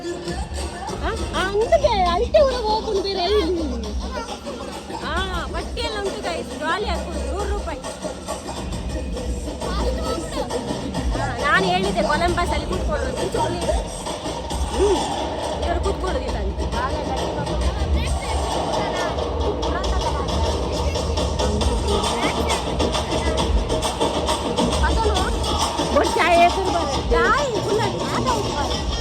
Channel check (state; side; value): identical; both; correlation 1.00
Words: ಅಂದಕ್ಕೆ ಅಲ್ಟೆ ಊರಿಗೆ ಹೋಗ್ಕೊಂಡು ಬೇರೆ ಬಟ್ಟೆ ಎಲ್ಲ ಉಂಟು ಗೈಸ್ ಜಾಲಿ ಹಾಕೊಂಡು 100 ರೂಪಾಯಿ. ನಾನು ಹೇಳಿದ್ದೆ ಕೊಲಂಬಸ್ ಅಲ್ಲಿ ಕೂತ್ಕೊಳ್ಳೋದು ಇವರು ಕೂತ್ಕೊಳ್ಳೋದಿಲ್ಲ ಅಂತ